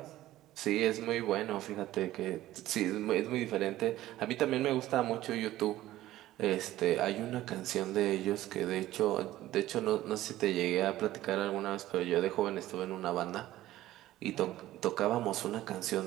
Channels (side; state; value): left; quieter; 14.9 dB